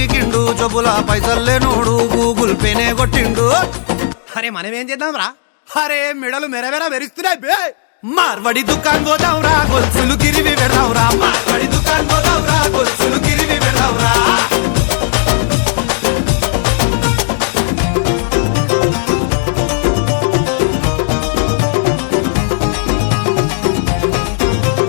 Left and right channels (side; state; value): right; silent; digital silence